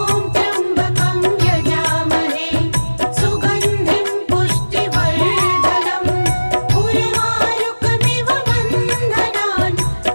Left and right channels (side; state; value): both; inverted; correlation -1.00